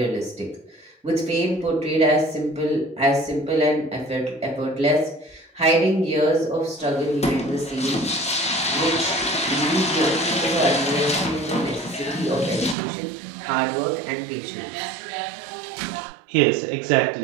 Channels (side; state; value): left; drops out; at 12.8 s